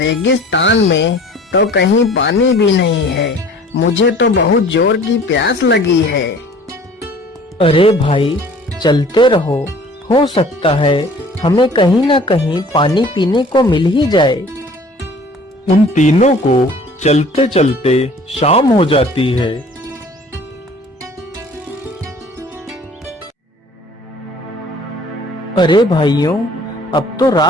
में तो कहीं पानी भी नहीं है। मुझे तो बहुत जोर की प्यास लगी है। अरे भाई, चलते रहो, हो सकता है हमें कहीं ना कहीं पानी पीने को मिल ही जाए। उन तीनों को चलते चलते शाम हो जाती है। अरे भाइयों, अब तो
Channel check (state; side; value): normal; both; correlation 0.49